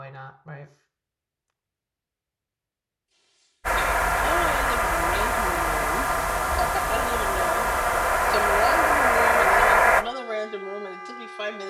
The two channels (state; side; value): identical; both; correlation 1.00